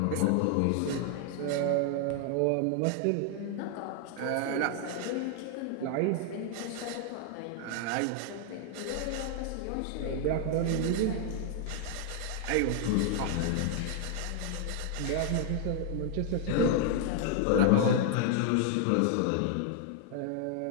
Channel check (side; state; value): both; different; correlation 0.00